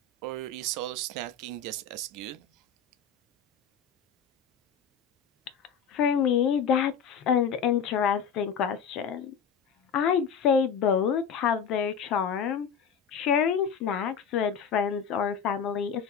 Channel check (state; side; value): quieter; right; 6.5 dB